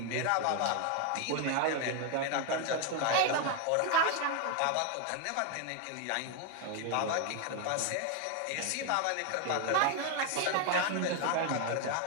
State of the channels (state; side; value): different; both; correlation 0.01